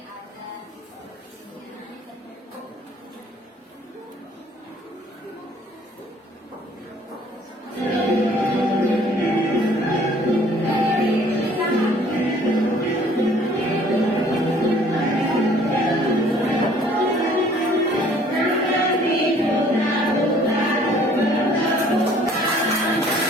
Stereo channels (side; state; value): both; normal; correlation 0.56